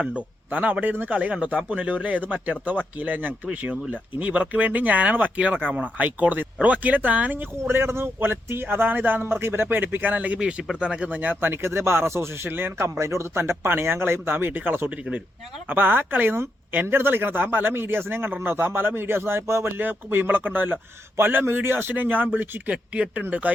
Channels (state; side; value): normal; both; correlation 0.82